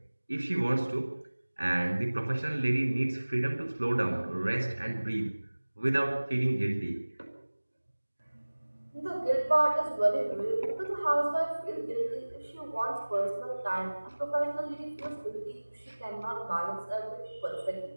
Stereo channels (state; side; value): inverted; both; correlation -1.00